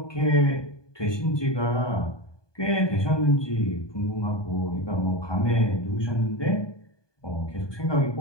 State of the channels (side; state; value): right; late; 1.2 ms